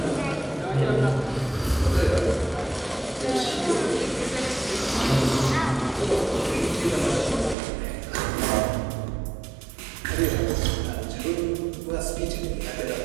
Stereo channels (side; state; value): left; drops out; at 7.6 s